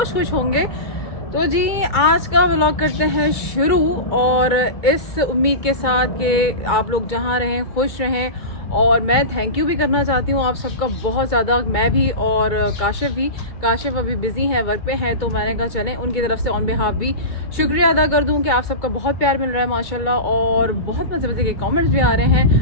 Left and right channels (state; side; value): late; right; 2.2 ms